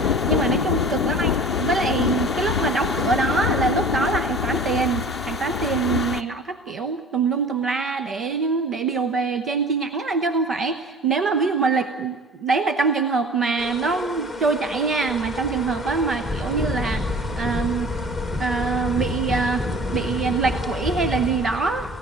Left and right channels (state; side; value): normal; both; correlation 0.43